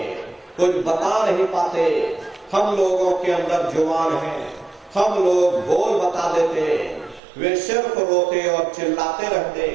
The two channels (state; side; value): drops out; left; at 7.2 s